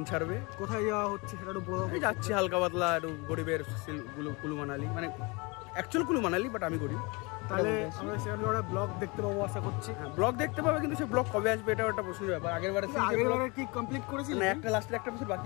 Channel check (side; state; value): right; quieter; 27.8 dB